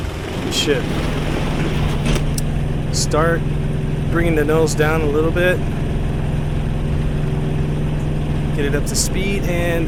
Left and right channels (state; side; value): identical; both; correlation 1.00